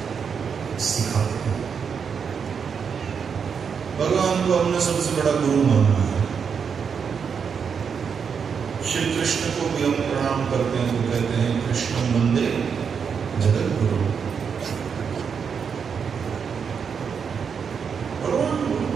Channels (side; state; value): left; quieter; 6.5 dB